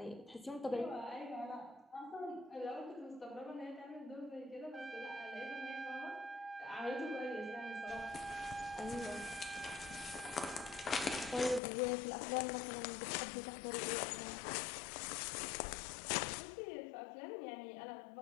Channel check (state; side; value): drops out; right; at 11.6 s